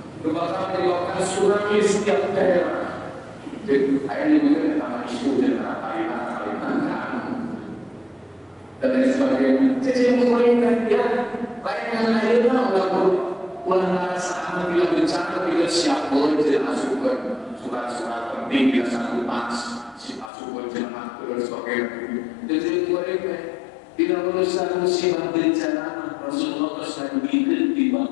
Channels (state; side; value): drops out; right; at 20.3 s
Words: menyebabkan tsunami setiap daerah. Jadi akhirnya mungkin nama isu dan kalimat dan lain sebagainya. Jadi pemerintah dia layanan akhirnya ulang saat bila bencana bila siap boleh tidak masukkan surat-surat penting bila satu pas masukkan jemaah dan sebagainya. Jadi mereka tidak berusaha musibah bencana Rasulullah SAW bikin di